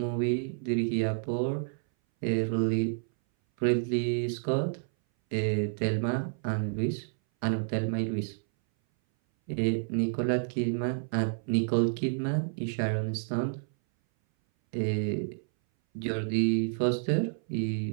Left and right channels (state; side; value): silent; left; 58 dB below the other